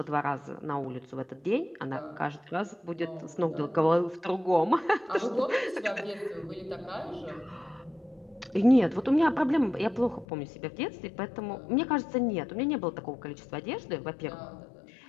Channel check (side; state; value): right; drops out; at 10.2 s